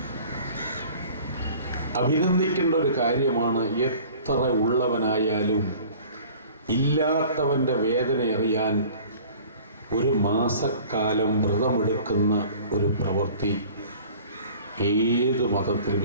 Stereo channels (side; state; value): both; inverted; correlation -0.47